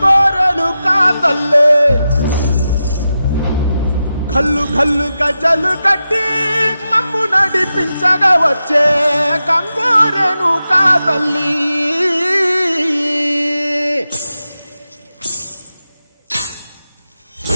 కా తల్లి, గల్లు గల్లు గజలు కట్టి మమ్ము నడిపించగా వచ్చే గంగోరెను కా తల్లి.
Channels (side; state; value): both; inverted; correlation -0.91